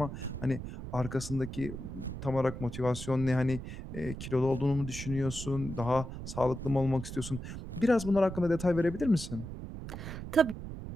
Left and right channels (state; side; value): noise; right; rumble, 9 dB below the sound